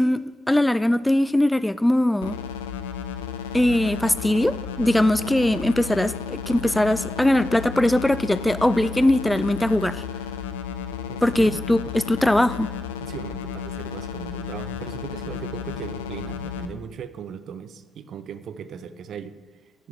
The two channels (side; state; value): both; normal; correlation 0.90